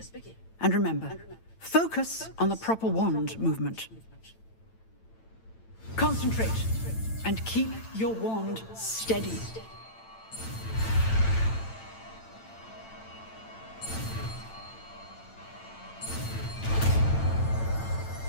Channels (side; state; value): right; late; 9.0 ms